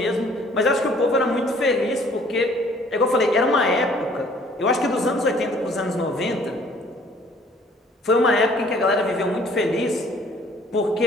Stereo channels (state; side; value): normal; both; correlation 0.57